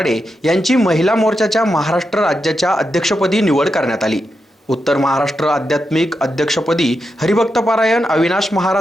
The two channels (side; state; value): both; normal; correlation 0.86